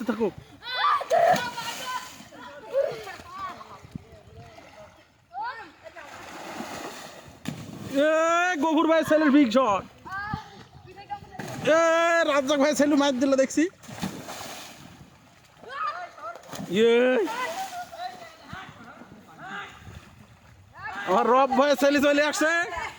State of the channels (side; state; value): both; identical; correlation 1.00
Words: থাকুক। গফুর ভাই ছেলের বিগ শট, রাজ্জাক ভাই ছেলে মার দিল দেখছি। আমার রব ভাই ছেলে চলে আসছে,